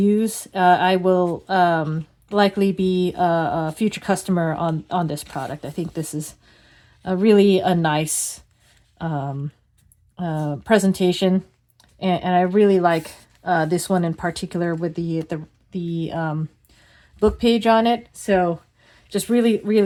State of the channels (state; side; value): identical; both; correlation 1.00